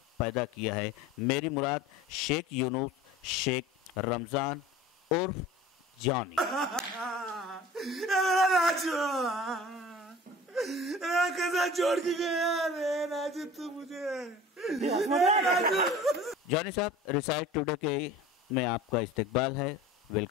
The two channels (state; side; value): normal; both; correlation 0.41